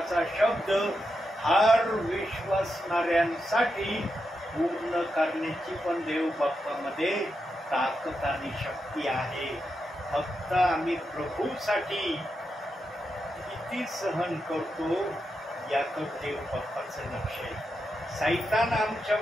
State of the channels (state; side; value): normal; both; correlation 0.86